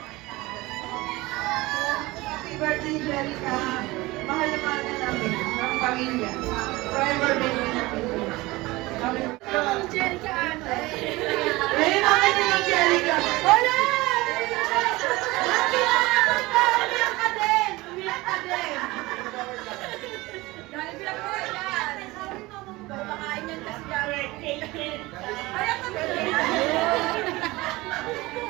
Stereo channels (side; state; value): left; quieter; 20.8 dB